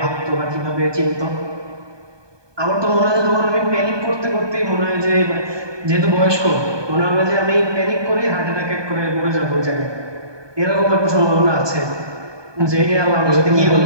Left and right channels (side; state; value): left; late; 1.2 ms